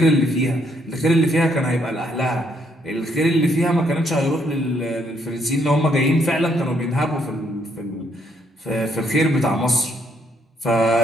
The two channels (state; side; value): normal; both; correlation 0.71